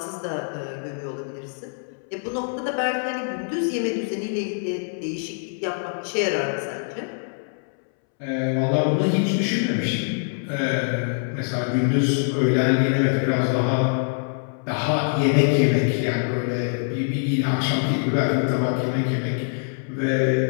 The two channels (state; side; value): silent; right; 63 dB below the other